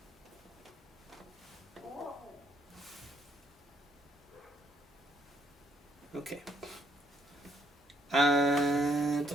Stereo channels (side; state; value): both; normal; correlation 0.72